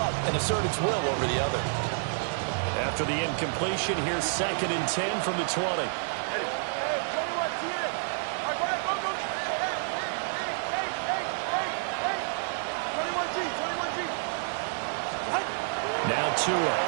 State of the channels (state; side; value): silent; left; 59 dB below the other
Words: and assert its will over the other. After the incompletion, here's 2nd and 10 from the 20. Hey, 21, see it. All right, go ahead, go. Hey. 21G, 21G. Now Tua.